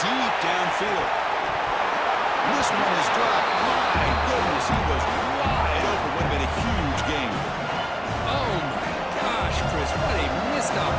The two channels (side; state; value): both; identical; correlation 1.00